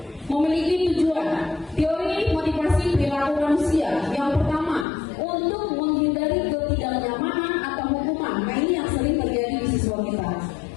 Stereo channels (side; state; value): right; drops out; at 4.9 s